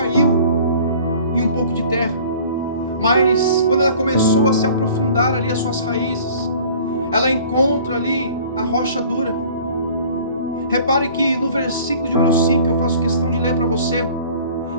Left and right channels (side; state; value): both; inverted; correlation -0.49